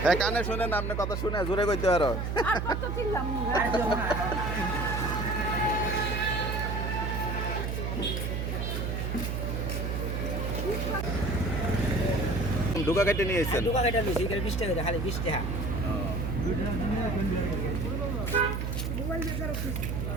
হ্যাঁ কানে শুনেন, আপনি কথা শুনে জোরে কইতে পারো। ঢুকা কেটে নিয়ে এসেছেন? দোকান এটা নিছি, এটা 20 টাকা খালি 20 টাকা।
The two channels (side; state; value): right; noise; hum, 1 dB below the sound